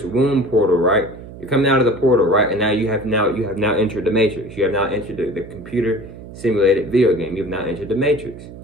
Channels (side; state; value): right; noise; hum, 15 dB below the sound